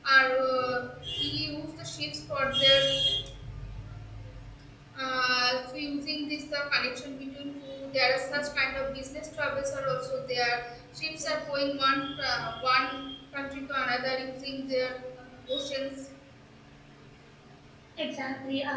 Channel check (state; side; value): identical; both; correlation 1.00